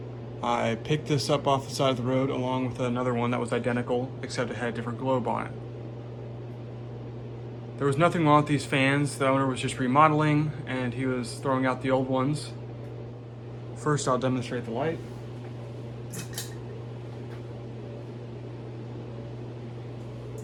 I picked this up off the side of the road along with another one that was identical, except it had a different globe on it. There was nothing wrong with these fans. The owner was just remodeling and he was throwing out the old ones. First I'll demonstrate the light.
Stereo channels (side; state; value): both; identical; correlation 1.00